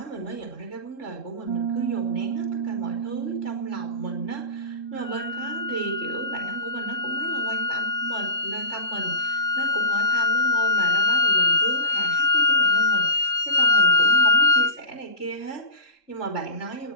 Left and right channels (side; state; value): right; late; 3.7 ms